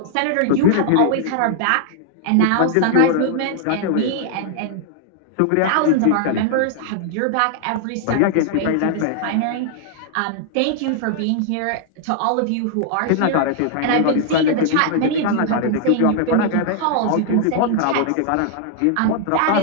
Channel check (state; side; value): different; both; correlation -0.01